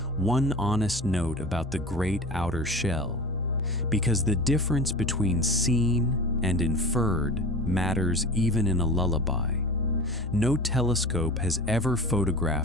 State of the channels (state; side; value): normal; both; correlation 0.35